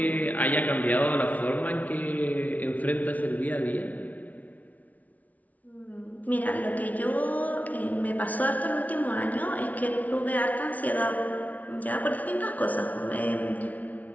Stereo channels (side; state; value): right; late; 0.072 ms